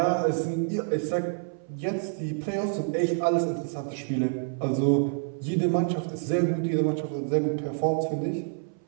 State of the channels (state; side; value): silent; left; 57 dB below the other